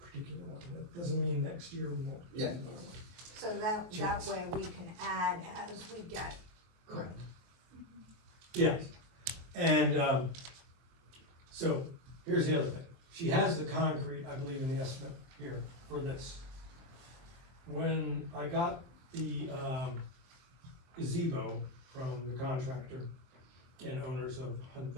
one. That doesn't mean next year we won't. do Yeah. another one. So that way we can add as we get. Correct. Yes, and, so, here's the other thing, she has the concrete, I believe, in the estimate here for this. When I got the, gazebo from the contractor and owners of Hunt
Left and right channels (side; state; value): left; late; 23 ms